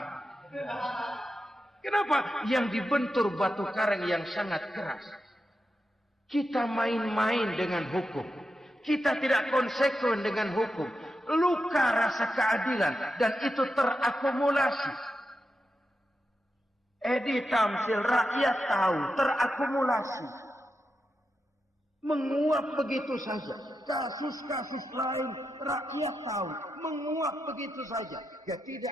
Kenapa? Yang dibentur batu karang yang sangat keras. Kita main-main dengan hukum. Kita tidak konsekuen dengan hukum. Luka rasa keadilan. Dan itu terakumulasi. Edi Tamsil, rakyat tahu, terakumulasi. Menguap begitu saja. Kasus-kasus lain, rakyat tahu. Menguap begitu saja.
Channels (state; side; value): normal; both; correlation 0.88